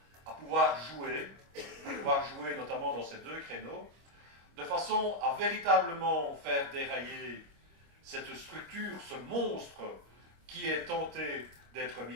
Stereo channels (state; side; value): late; left; 25 ms